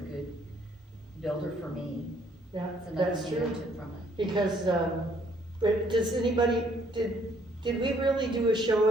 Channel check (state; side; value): normal; both; correlation 0.65